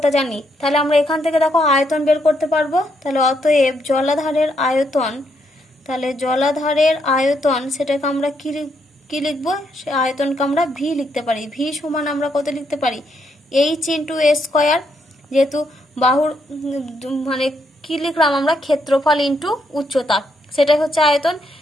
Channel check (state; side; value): normal; both; correlation 0.76